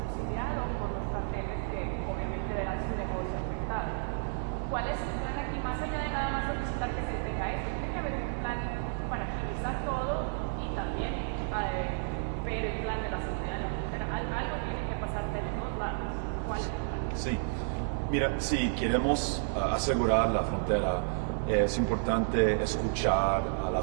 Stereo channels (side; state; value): left; silent; 57 dB below the other